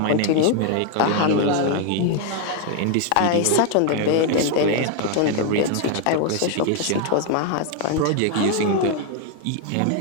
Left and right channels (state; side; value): different; both; correlation 0.00